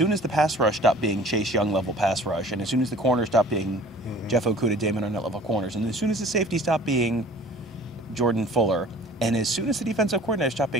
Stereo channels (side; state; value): both; normal; correlation 0.48